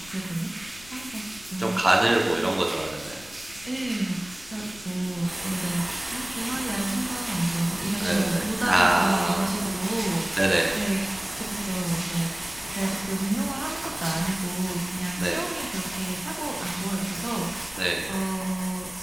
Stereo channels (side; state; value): left; noise; rumble, 20 dB below the sound